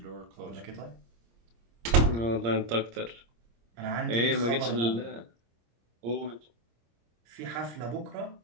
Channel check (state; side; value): late; left; 26 ms